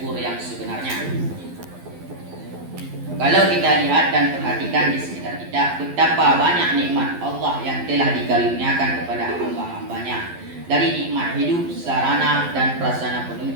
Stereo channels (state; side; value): late; left; 12 ms